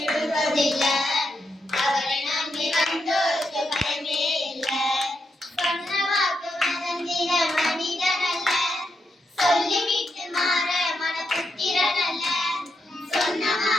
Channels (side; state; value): both; normal; correlation 0.83